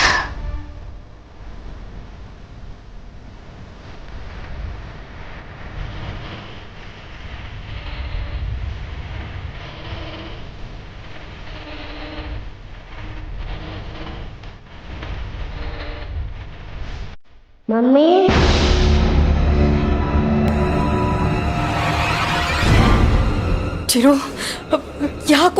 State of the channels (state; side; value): identical; both; correlation 1.00